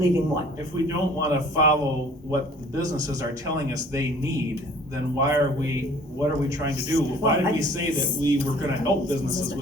what? If we don't wanna follow what the businesses are telling us they need, then what are we trying to do? Why did we say that we were gonna help businesses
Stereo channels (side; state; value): both; normal; correlation 0.52